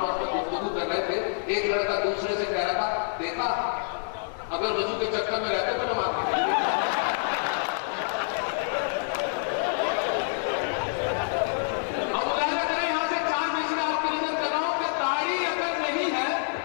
में गुफ्तगू कर रहे थे। एक लड़का दूसरे से कह रहा था, देखा अगर वजू के चक्कर में रहते तो नमाज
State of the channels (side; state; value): right; silent; digital silence